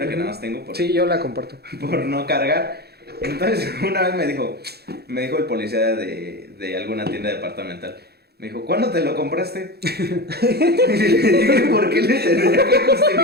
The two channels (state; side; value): late; left; 0.47 ms